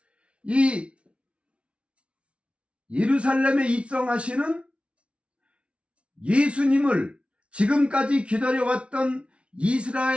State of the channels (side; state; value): left; late; 0.060 ms